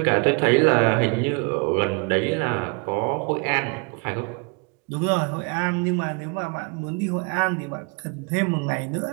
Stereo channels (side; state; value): left; quieter; 33.0 dB